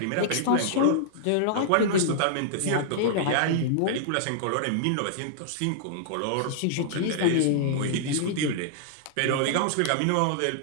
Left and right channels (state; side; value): different; both; correlation -0.01